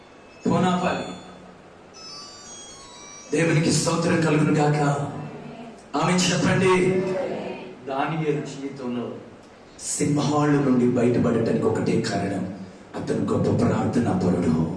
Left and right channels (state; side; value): identical; both; correlation 1.00